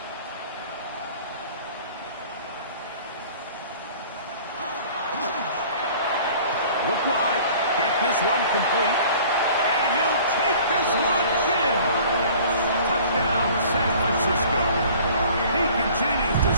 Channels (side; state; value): both; inverted; correlation -0.49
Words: Look wide, get this one complete, and he'll take this one in. Touchdown, San Francisco. He continues to